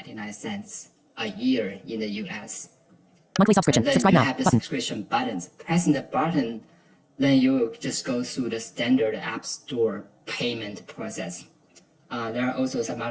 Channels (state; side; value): identical; both; correlation 1.00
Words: a year in the US. Monthly subscription. And then Subscribe you now have the button. subscription buttons. Pressing the button, then you will just go through the standard App Store payment process. There are also some